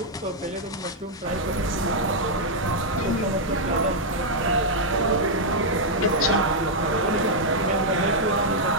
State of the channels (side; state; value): both; normal; correlation -0.04